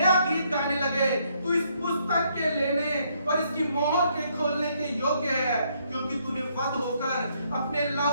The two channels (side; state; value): both; inverted; correlation -0.71